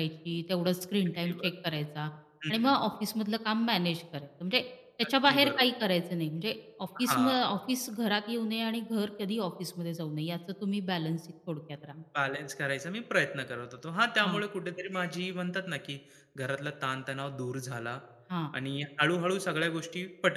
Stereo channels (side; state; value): both; identical; correlation 1.00